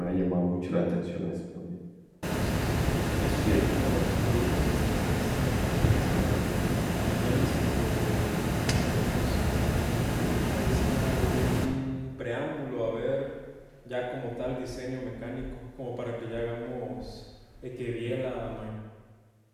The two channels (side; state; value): both; identical; correlation 1.00